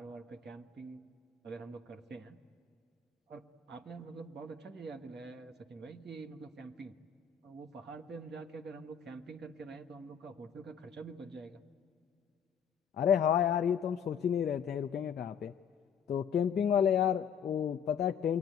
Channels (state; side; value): quieter; right; 7.5 dB